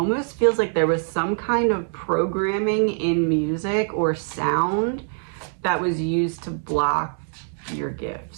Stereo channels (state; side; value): silent; left; 55 dB below the other